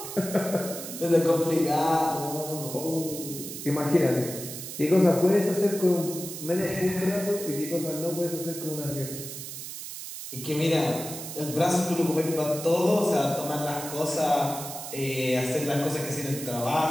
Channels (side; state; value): right; noise; hiss, 9 dB below the sound